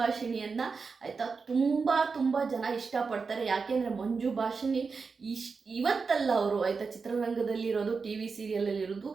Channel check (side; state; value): left; quieter; 4.9 dB